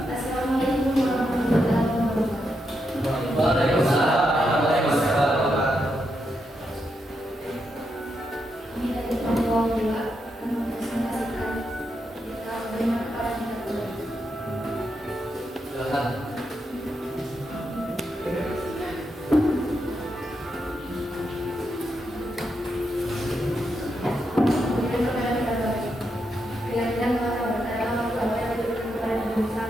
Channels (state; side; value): normal; both; correlation 0.83